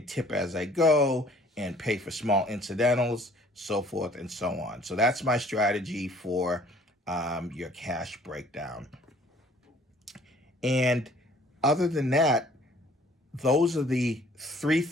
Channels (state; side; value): normal; both; correlation 0.56